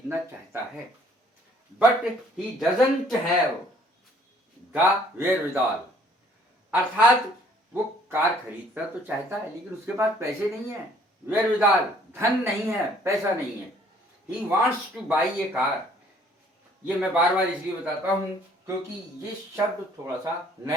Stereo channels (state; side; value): normal; both; correlation 0.59